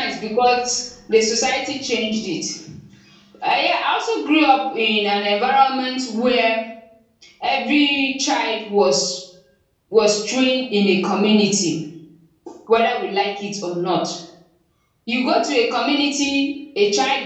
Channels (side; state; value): both; identical; correlation 1.00